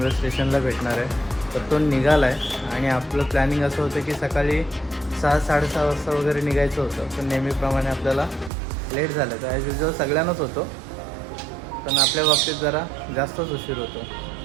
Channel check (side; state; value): left; drops out; at 8.5 s